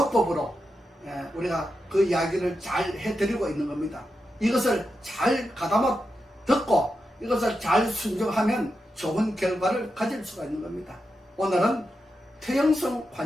우리가 그 이야기를 잘 해드리고 있는 겁니다. 이것을 잘 가다마 듣고 이것을 잘 순종하면 좋은 결과를 가질 수가 있는 겁니다. 오늘은 퇴행성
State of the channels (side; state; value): both; normal; correlation 0.87